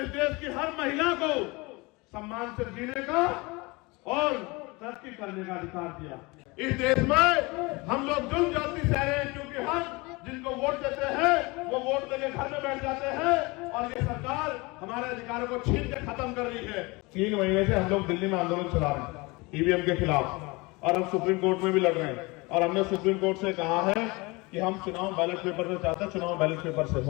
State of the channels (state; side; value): quieter; right; 25.1 dB